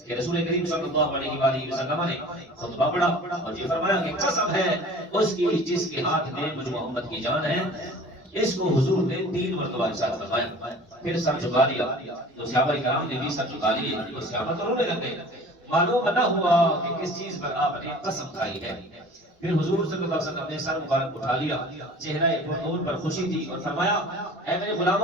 کہ رسول کریم صلی اللہ علیہ وآلہ وسلم نے خطبہ پڑھا اور یہ فرمایا کہ قسم ہے اس کی جس کے ہاتھ میں مجھ محمد کی جان ہے۔ اس کو حضور نے 3 مرتبہ ارشاد فرمایا، پھر سر جھکا لیا تو صحابہ کرام نے بھی سر جھکا لیے، تو صحابہ تو رونے لگے، معلوم نہ ہوا کہ کس چیز پر آپ نے قسم کھائی ہے۔ پھر حضور صلی اللہ علیہ وسلم نے سر مبارک اٹھا لیا، چہرہ پرنور پر خوشی تھی اور فرمایا اے میرے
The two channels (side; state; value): both; normal; correlation 0.44